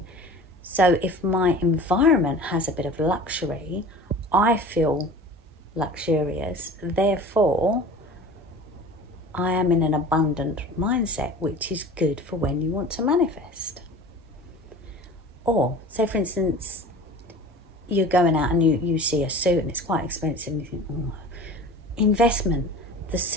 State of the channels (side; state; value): both; normal; correlation 0.39